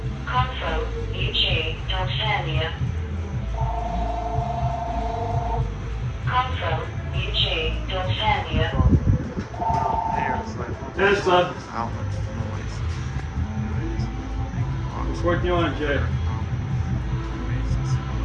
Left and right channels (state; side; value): identical; both; correlation 1.00